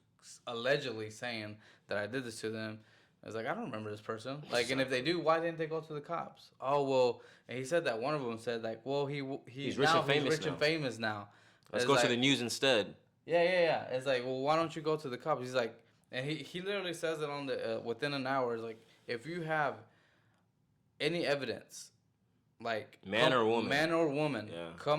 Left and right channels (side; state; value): both; identical; correlation 1.00